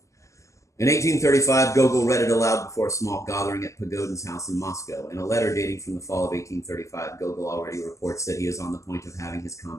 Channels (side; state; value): right; late; 0.15 ms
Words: In 1835, Gogol read it aloud before a small gathering at Pagodin's house in Moscow. In a letter dating from the fall of 1835, Gogol already reports that he is on the point of having his